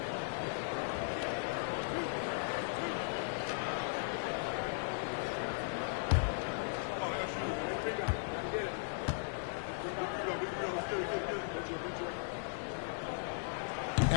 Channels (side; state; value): right; silent; 53 dB below the other